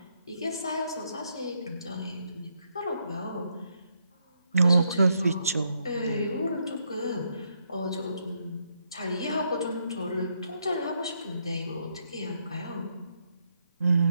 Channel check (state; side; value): inverted; both; correlation -0.77